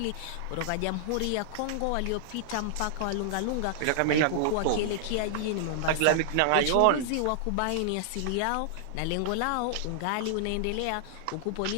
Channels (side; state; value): both; different; correlation -0.01